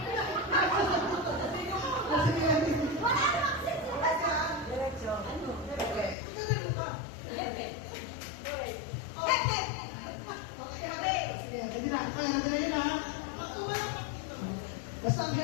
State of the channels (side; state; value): right; drops out; at 6.2 s